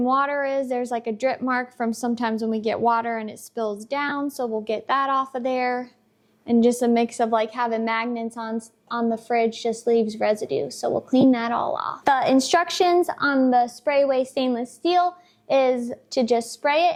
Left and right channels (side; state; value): both; identical; correlation 1.00